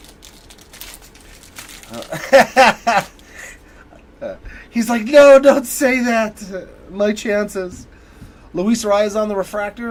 He's like, no, don't say that. My chances. Luis Arias on the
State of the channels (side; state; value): both; identical; correlation 1.00